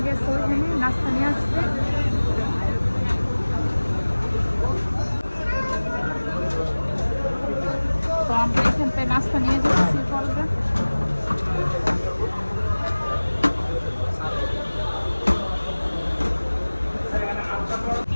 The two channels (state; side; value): inverted; both; correlation -1.00